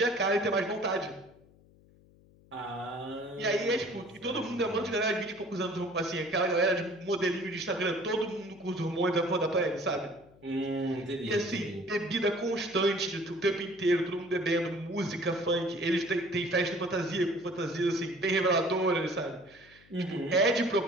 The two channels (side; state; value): left; noise; hum, 27 dB below the sound